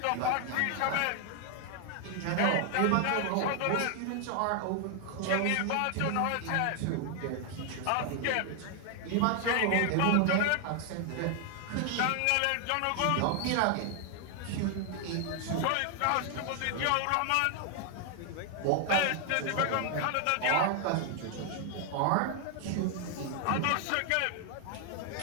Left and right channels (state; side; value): different; both; correlation 0.00